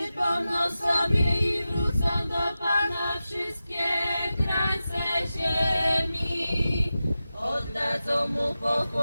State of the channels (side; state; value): both; inverted; correlation -0.93